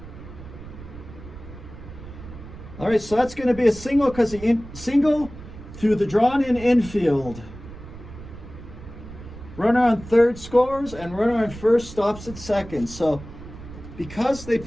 All right, so that's going to be a single because the single through the drawn-in infield. Runner on third scores, and runner on first stops at second. So because they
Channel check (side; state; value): right; noise; rumble, 15 dB below the sound